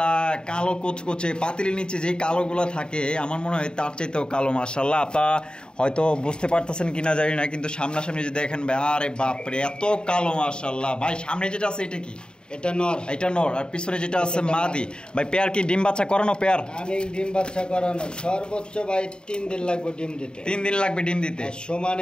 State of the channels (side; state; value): right; late; 0.049 ms